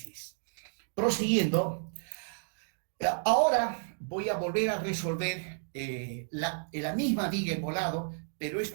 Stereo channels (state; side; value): silent; left; digital silence